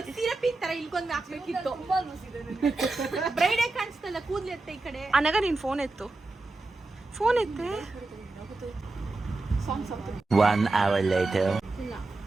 ಸಿರಪಿನ್ ತರ ಇಲ್ಕೊಂಡ್ ಹಾಕ್ಬೇಕಿತ್ತು. ತುಂಬಾ ಲೂಸ್ ಇದೆ. ಬ್ರೈಡೇ ಕಾಣಿಸ್ತಲ್ಲ, ಕೂದ್ಲು ಎತ್ತ ಈ ಕಡೆ. ಅನಗ ನೀನ್ ಫೋನ್ ಎತ್ತು. ಫೋನ್ ಎತ್ತೆ. 1 hour later.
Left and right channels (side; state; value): left; quieter; 3.2 dB